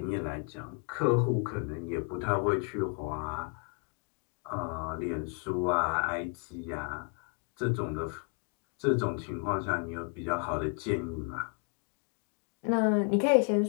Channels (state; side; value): quieter; right; 35.5 dB